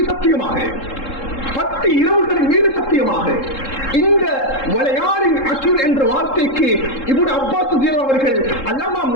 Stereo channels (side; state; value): right; late; 3.7 ms